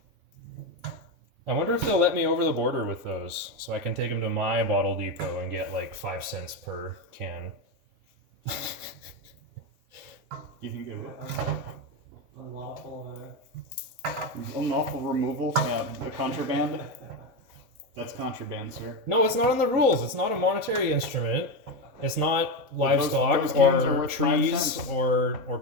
I wonder if they'll let me over the border with those, so I can take them to my bottle depot and get like 5 cents per can. You think they will? Unlawful. Unlawful removal, the contraband. That's contraband, sir. No, it's not in the rules. It's not a monetary instrument. It's not livestock those cans are or worth 5 trees cents. or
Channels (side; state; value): left; late; 3.9 ms